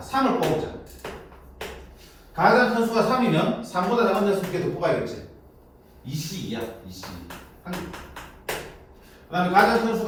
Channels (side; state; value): both; identical; correlation 1.00